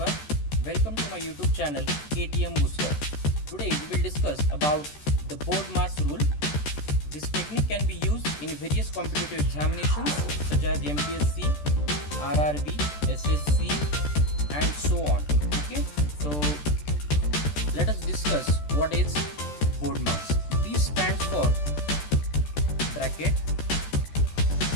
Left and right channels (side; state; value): right; late; 14 ms